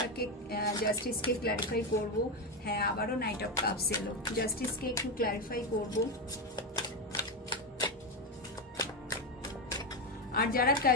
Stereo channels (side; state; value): both; normal; correlation 0.11